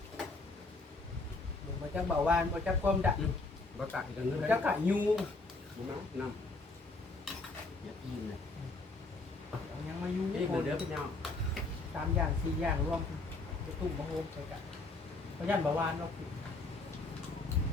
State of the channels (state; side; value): quieter; right; 3.4 dB